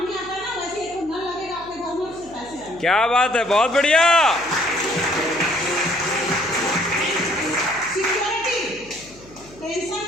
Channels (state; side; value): noise; left; hum, 23 dB below the sound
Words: आता है ना, वैसे एक नल लगेगा आपके घर में, उससे पैसे आएंगे। क्या बात है, बहुत बढ़िया। सिक्योरिटी, टेंशन